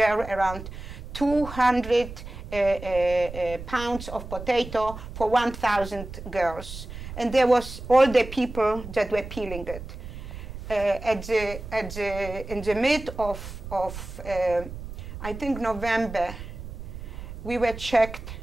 around 200 pounds of potato for 1,000 girls. And there was all the people that were peeling it. In the mid of I think November, we were checked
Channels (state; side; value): noise; right; rumble, 11 dB below the sound